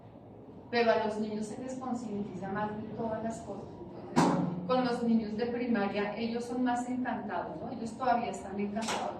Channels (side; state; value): both; identical; correlation 1.00